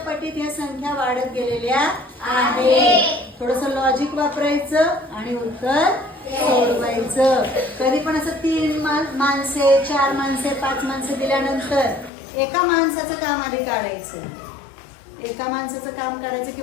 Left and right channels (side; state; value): right; drops out; at 12.1 s